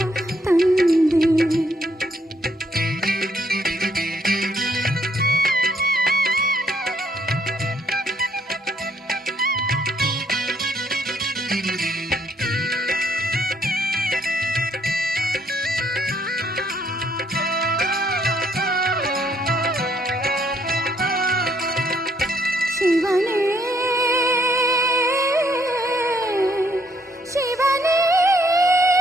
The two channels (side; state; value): both; normal; correlation 0.69